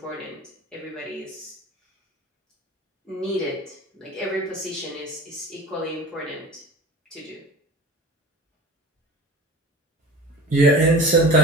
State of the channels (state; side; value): normal; both; correlation 0.37